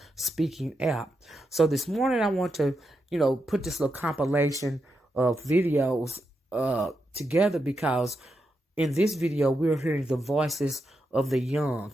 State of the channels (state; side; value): normal; both; correlation 0.85